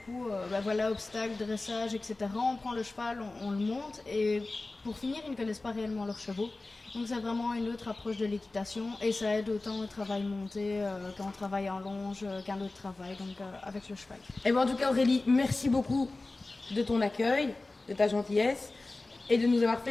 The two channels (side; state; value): right; quieter; 3.2 dB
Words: obstacles, dressage, etc. On prend le cheval, on le monte et pour finir, ils ne connaissent pas réellement leurs chevaux. Donc c'est vraiment une autre approche de l'équitation et ça aide autant au travail monté quand on travaille en longe qu'un autre travail, donc avec le cheval. Et en tout cas Aurélie, merci beaucoup de ton accueil, de ta gentillesse et de nous avoir